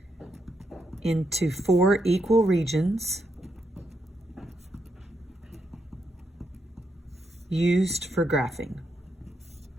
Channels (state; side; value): normal; both; correlation 0.81